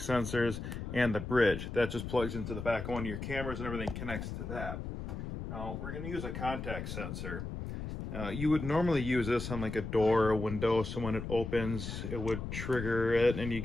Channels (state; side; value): noise; left; rumble, 6 dB below the sound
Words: sensors, and the bridge. That just plugs into the back of one of your cameras and everything connects to that. Now, we're going to use a contact sensor. You would normally use this on like a door or a window, so when it opens, it would trigger it and you